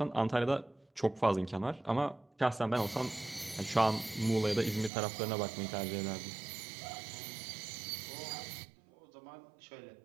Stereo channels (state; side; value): drops out; left; at 4.9 s